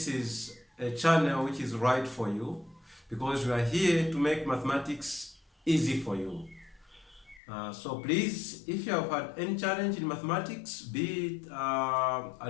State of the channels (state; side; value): drops out; right; at 7.4 s